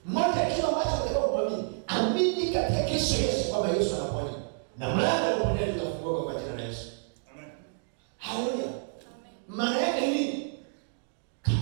Moja kitu ambacho unataka kuamini, amini katika Kristo Yesu kwamba Yesu anaponya. Na mlango wa uponyaji utafunguka kwa jina la Yesu. Amen. Haleluya. Amen. Maana yake nini?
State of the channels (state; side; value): silent; left; digital silence